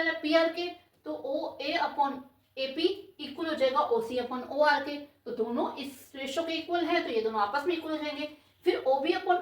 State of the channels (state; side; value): identical; both; correlation 1.00